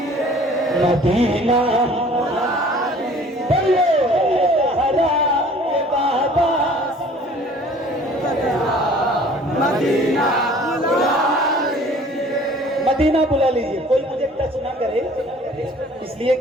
मदीना बोलो ज़हरा के बाबा मदीना मदीना बुला लीजिए। कोई मुझे टच ना करे इसलिए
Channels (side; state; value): both; normal; correlation 0.51